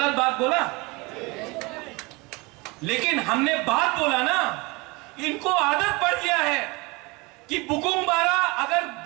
बात बोला? लेकिन हमने बात बोला ना, इनको आदत पड़ गया है कि बुकुंग बारा अगर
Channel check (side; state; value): left; quieter; 25.6 dB